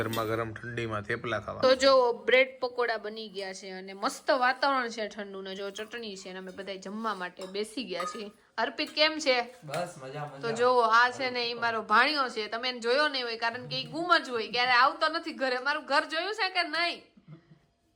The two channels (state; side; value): identical; both; correlation 1.00